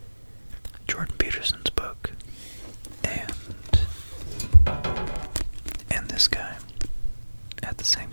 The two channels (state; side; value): inverted; both; correlation -1.00